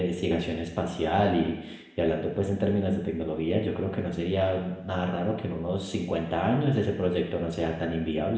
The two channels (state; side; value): identical; both; correlation 1.00